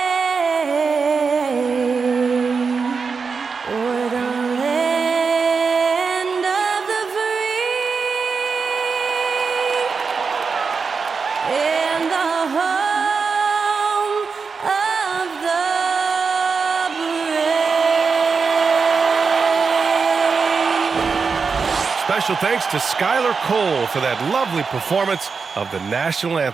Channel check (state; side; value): quieter; left; 5.1 dB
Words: o'er the land of the free and the home of the Special thanks to Skylar Cole for that lovely performance of the national